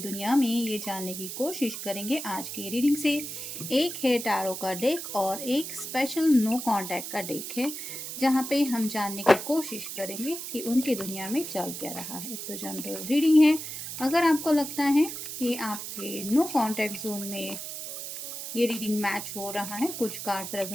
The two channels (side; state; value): right; noise; hiss, 7 dB below the sound